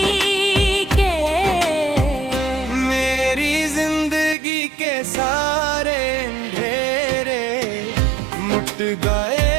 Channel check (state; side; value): drops out; left; at 4.4 s